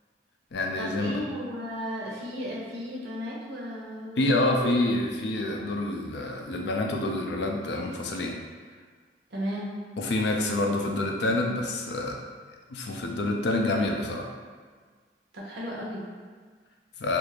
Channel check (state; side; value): normal; both; correlation 0.41